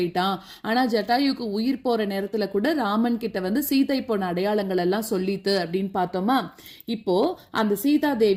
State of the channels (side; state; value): both; identical; correlation 1.00